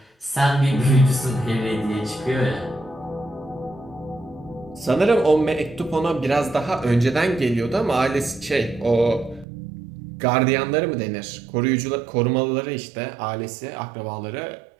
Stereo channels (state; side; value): drops out; left; at 9.5 s